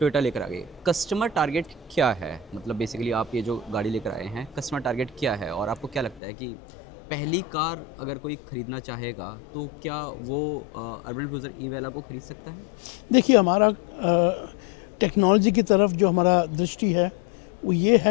लेकर आ गई। कस्टमर टारगेट क्या है? मतलब बेसिकली आप ये जो गाड़ी लेकर आए हैं, कस्टमर टारगेट क्या है और आपको क्या लगता है कि पहली कार अगर कोई ख़रीदना चाहेगा तो क्या वो अर्बन क्रूजर ई वेला को ख़रीद सकता है? देखिए, हमारा टेक्नोलॉजी की तरफ जो हमारा दृष्टि है वो ये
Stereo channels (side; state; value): right; drops out; at 6.2 s